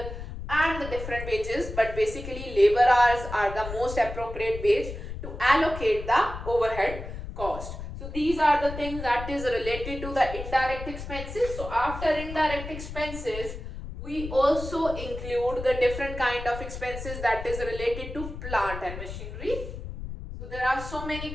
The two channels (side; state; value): left; noise; rumble, 9 dB below the sound